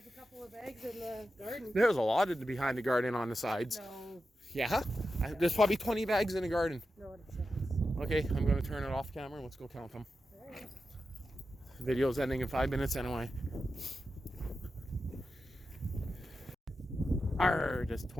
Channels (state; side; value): normal; both; correlation 0.90